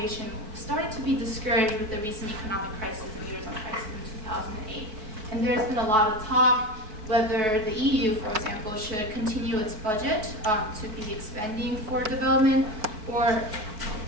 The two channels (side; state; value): left; late; 4.6 ms